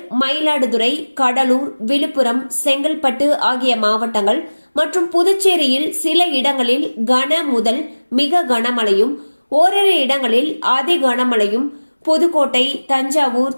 மயிலாடுதுறை, கடலூர், விழுப்புரம், செங்கல்பட்டு ஆகிய மாவட்டங்கள் மற்றும் புதுச்சேரியில் சில இடங்களில் கன முதல் மிக கனமழையும் ஓரிரு இடங்களில் அதி கனமழையும், புதுக்கோட்டை, தஞ்சாவூர்,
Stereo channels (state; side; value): inverted; both; correlation -1.00